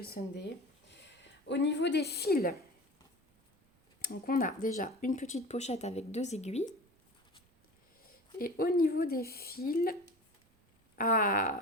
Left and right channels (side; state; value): both; normal; correlation 0.36